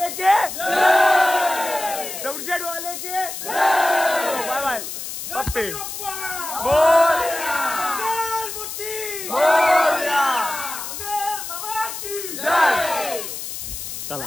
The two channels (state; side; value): noise; left; hiss, 7 dB below the sound